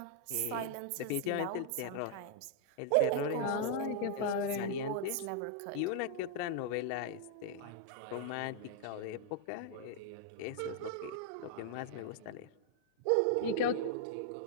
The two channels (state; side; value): different; both; correlation 0.00